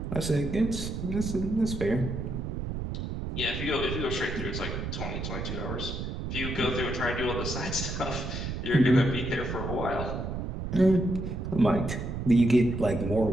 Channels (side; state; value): right; noise; rumble, 4 dB below the sound